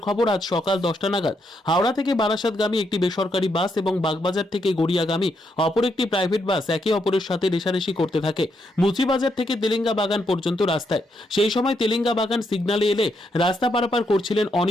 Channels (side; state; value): both; normal; correlation 0.78